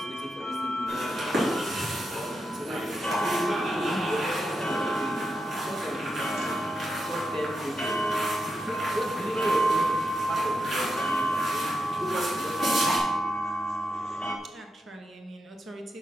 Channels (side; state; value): both; normal; correlation 0.86